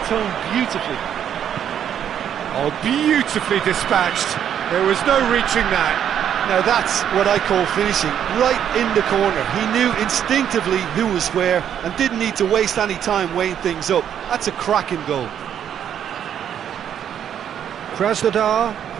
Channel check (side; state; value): left; quieter; 9.4 dB